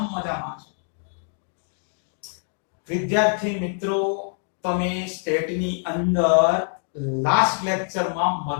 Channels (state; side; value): silent; right; 62 dB below the other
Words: મજામાં છું. વિદ્યાર્થી મિત્રો, તમે સ્ટેટની અંદર લાસ્ટ લેક્ચરમાં